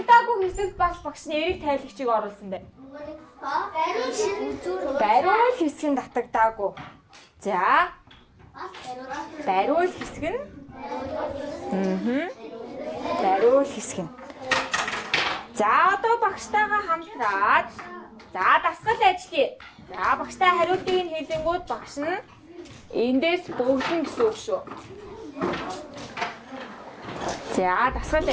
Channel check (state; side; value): identical; both; correlation 1.00